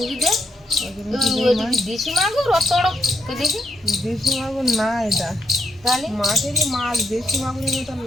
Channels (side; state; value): both; normal; correlation 0.77